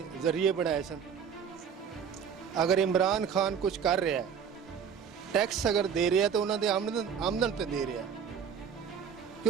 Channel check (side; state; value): left; quieter; 7.5 dB